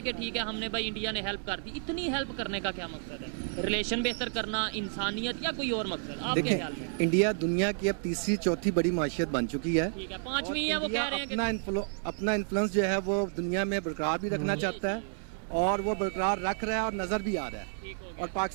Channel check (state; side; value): silent; left; 57 dB below the other